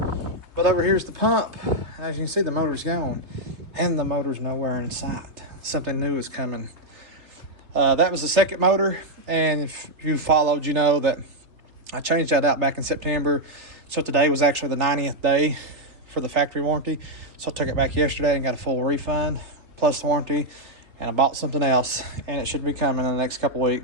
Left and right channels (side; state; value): left; late; 3.2 ms